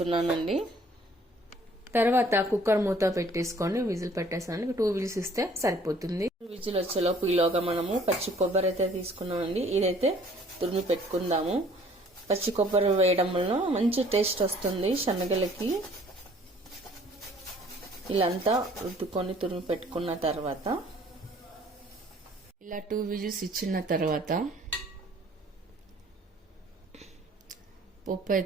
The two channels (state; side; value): normal; both; correlation 0.57